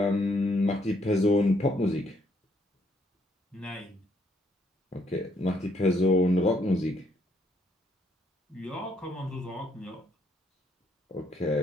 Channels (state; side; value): normal; both; correlation 0.71